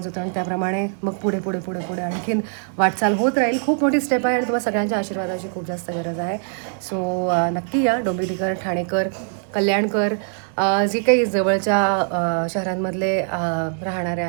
होतो आणि त्याप्रमाणे मग पुढे पुढे पुढे पुढे आणखीन वाटचाल होत राहील. खूप मोठी स्टेप आहे आणि तुम्हाला सगळ्यांच्या आशीर्वादाची खूप जास्त गरज आहे. सो नक्की या. डोंबिवलीकर, ठाणेकर, कल्याणकर, जे काही जवळच्या शहरांमधले राहणारे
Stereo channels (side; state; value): left; silent; 64 dB below the other